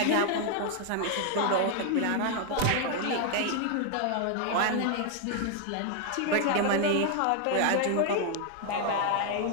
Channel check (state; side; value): different; both; correlation 0.00